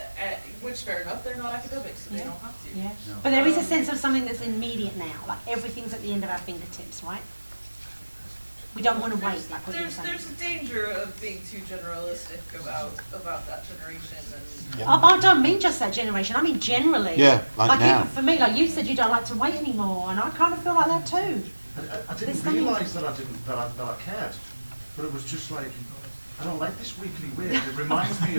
Which fair enough, they're not academics, so they don't have to. Yeah. But there is a sense of something that's immediate now. Like everything's at the end of our fingertips, right? We don't want to wait, like what you're saying. There's a danger of being too generalistic about that generation and I don't mean just that generation. I mean generally. Yeah, like now. For me, like you said, you don't like to wait anymore, and I kind of feel like that too. I didn't realise that I cared, but it was just like, I don't like this weekly weird. It reminds me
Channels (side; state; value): both; inverted; correlation -1.00